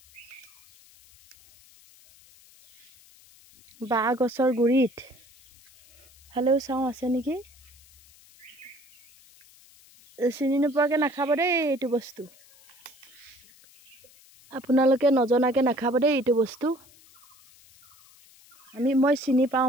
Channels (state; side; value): noise; left; hiss, 26 dB below the sound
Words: বাঁহ গছৰ গুৰিত ফালেও চাওঁ আছে নেকি চিনি নোপোৱাকৈ নাখাব দেই এইটো বস্তু আপোনালোকে নজনাকৈ নাখাব দেই এইটো বস্তু মই চিনি পাওঁ